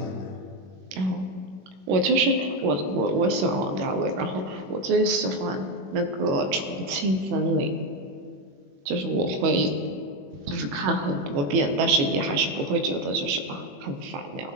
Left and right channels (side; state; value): left; late; 21 ms